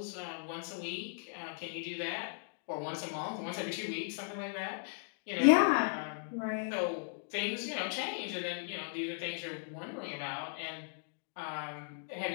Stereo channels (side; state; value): right; silent; digital silence